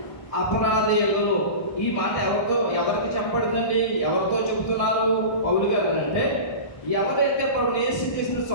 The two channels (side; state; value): right; late; 1.6 ms